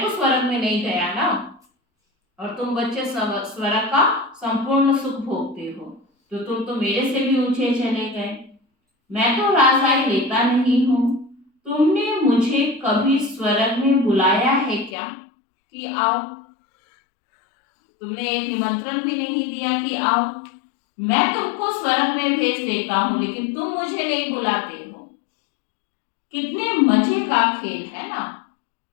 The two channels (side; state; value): right; drops out; at 15.0 s